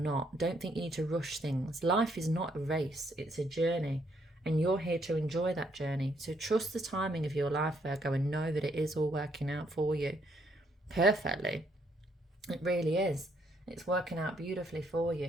Don't think you need to rush things. Life is not a race, it's a journey, and you're here to enjoy that journey. So trust the timing of your life, Virgo, and know that it is all working out for you perfectly. It really is. It's working out beautifully for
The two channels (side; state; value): both; normal; correlation 0.71